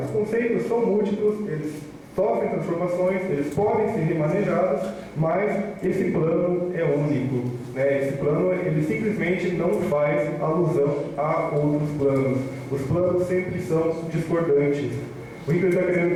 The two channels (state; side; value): identical; both; correlation 1.00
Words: conceitos são múltiplos, eles sofrem transformações, eles podem ser remanejados, mas esse plano é único. Esse plano ele simplesmente não faz alusão a outros planos. Os planos sempre são discordantes. O que ele está